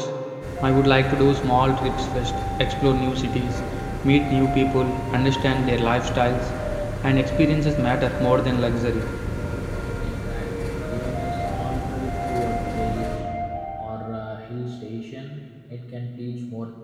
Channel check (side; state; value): both; identical; correlation 1.00